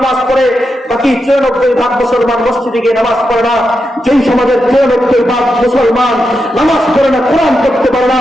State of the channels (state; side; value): normal; both; correlation 0.87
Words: পড়ে, বাকি 94% মুসলমান মসজিদে গিয়ে নামাজ পড়ে না। যেই সমাজের 94% মুসলমান নামাজ পড়ে না, কোরআন পড়তে পারে না,